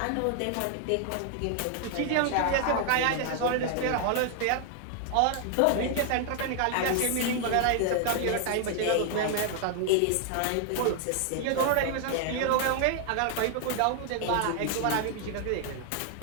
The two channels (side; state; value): both; different; correlation 0.00